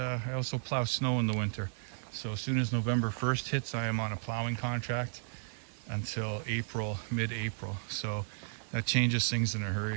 also plow snow in the winter. So as soon as November 1st hits, I am on a plowing contract until April, mid-April. So that changes things in a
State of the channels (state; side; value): silent; left; 55 dB below the other